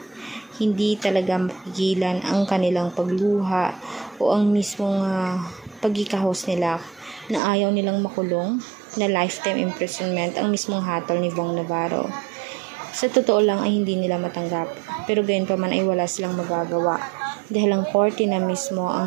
Hindi talaga mapigilan ang kanilang pagluha o ang mismong pagkikahos nila na ayaw nilang makulong na lifetime imprisonment ang mismong hatol ni Bong Navarro. Sa totoo lang ay hindi nila matanggap, pero gayon pa man ay wala silang magagawa dahil ang korte na mismo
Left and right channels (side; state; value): left; drops out; at 7.4 s